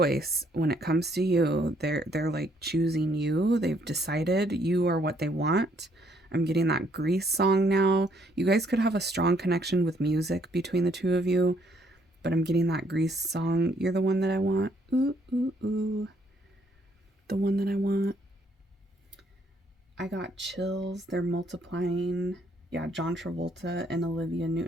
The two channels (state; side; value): normal; both; correlation 0.68